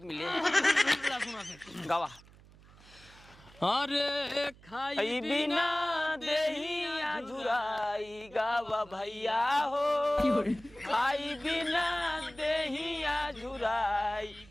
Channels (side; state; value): right; noise; hum, 23 dB below the sound